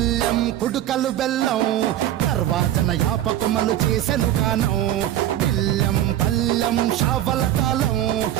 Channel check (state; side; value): quieter; left; 12.5 dB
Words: కుడుకలు బెల్లం తర్వాతన యాపకమలు చేసెను గానం పిల్లెం పల్లెం షావల కాలం